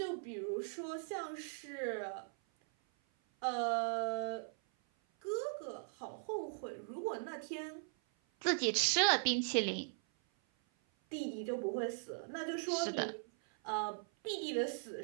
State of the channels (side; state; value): left; silent; 52 dB below the other